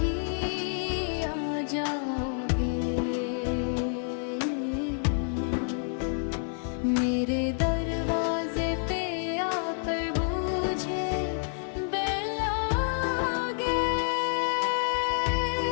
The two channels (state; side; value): silent; right; digital silence